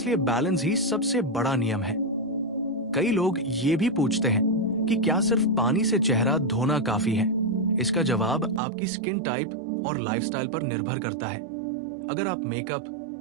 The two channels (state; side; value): drops out; left; at 8.6 s